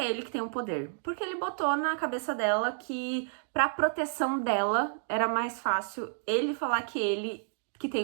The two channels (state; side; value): silent; left; digital silence